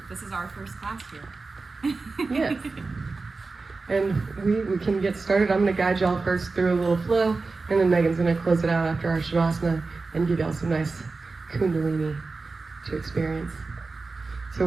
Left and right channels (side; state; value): left; quieter; 3.9 dB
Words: This is our first class here. Yes. And we can get started. I'm going to guide y'all first through a little flow, and then Megan's going to close it out after our Shavasana and give y'all some nice Kundalini to experience. So